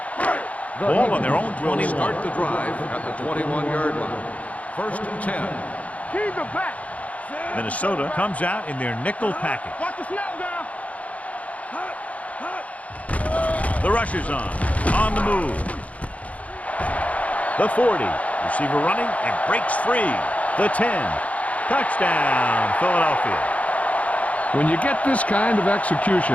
Ball on their own 21. Start the drive at the 21-yard line. First and 10. Keep the back. Minnesota comes out in their nickel package. Watch the snap down. The rush is on the move. The 40, receiver running and breaks free. The 10, touchdown, Philadelphia. When you get this kind of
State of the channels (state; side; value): late; right; 0.068 ms